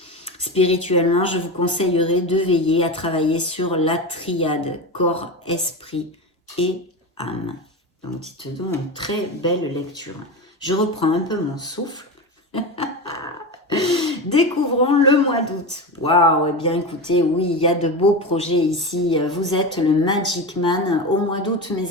Spirituellement, je vous conseillerais de veiller à travailler sur la triade corps, esprit et âme. Donc, dites donc une très belle lecture. Je reprends un peu mon souffle. Découvrons le mois d'août. Waouh, eh bien écoutez, oui, il y a de beaux projets ici. Vous êtes le Magic Man au mois d'août,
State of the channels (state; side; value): normal; both; correlation 0.22